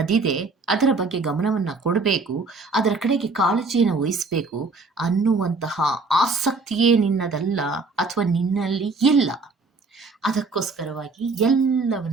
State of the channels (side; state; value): left; quieter; 3.9 dB